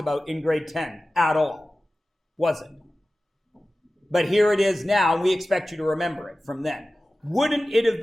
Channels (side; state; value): both; normal; correlation 0.96